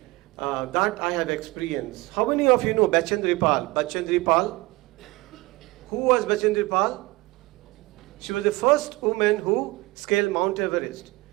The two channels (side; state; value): left; quieter; 21.5 dB